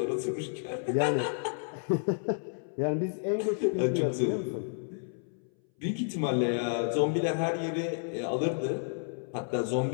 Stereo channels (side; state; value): right; silent; 57 dB below the other